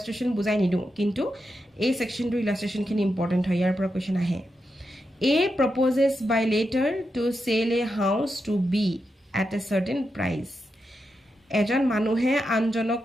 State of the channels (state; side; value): normal; both; correlation 0.87